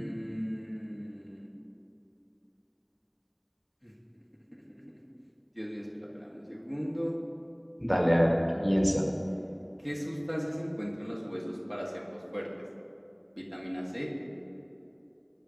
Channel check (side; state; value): both; identical; correlation 1.00